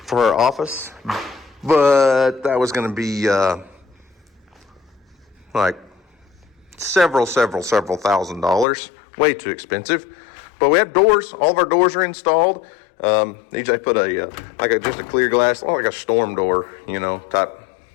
her office, but that was going to be like several $1,000s, way too expensive. But we have doors. All of our doors are installed. DJ put just a clear glass, like a storm door, you know, type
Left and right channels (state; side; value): drops out; right; at 8.7 s